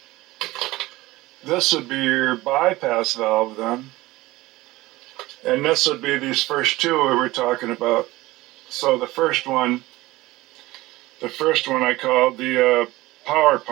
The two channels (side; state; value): left; quieter; 19.0 dB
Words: this would be your bypass valve then. And this would be these first 2 we were talking about. So the first one I called the power